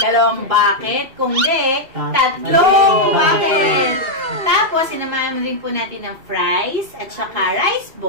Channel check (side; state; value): left; late; 2.7 ms